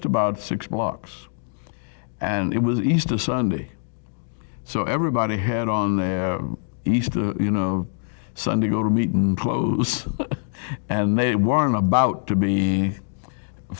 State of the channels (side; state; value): right; silent; 57 dB below the other